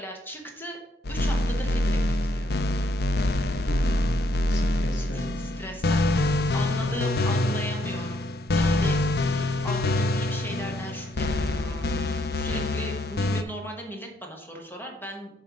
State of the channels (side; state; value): both; normal; correlation 0.73